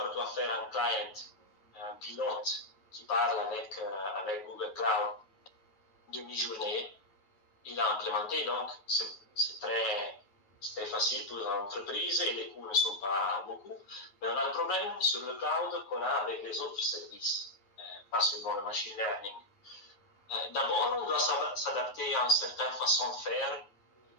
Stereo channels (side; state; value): right; late; 9.4 ms